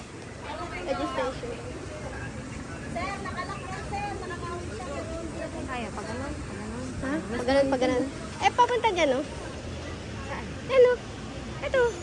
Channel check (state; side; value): identical; both; correlation 1.00